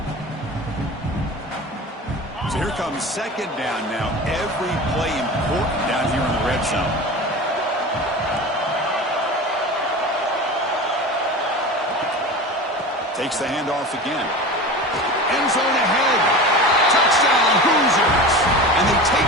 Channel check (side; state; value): both; normal; correlation 0.32